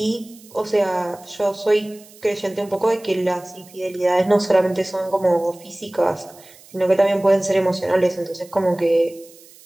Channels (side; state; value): right; noise; hiss, 24 dB below the sound